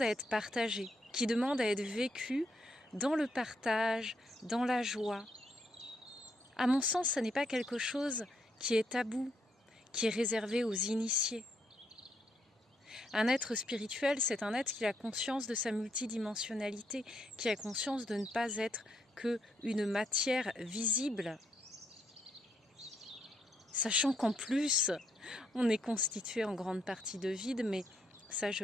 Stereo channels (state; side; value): normal; both; correlation 0.75